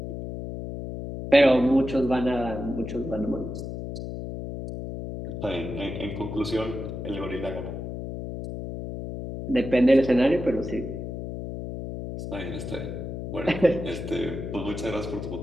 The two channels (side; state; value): left; noise; hum, 7 dB below the sound